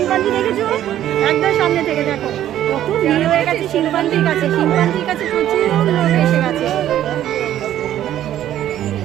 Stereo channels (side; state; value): left; quieter; 12.0 dB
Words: দেখেছো একদম সামনে থেকে দেখো কত ভিড় হয়ে গেছে শিম্পাঞ্জির কাছে প্রচুর লোক এসে গেছে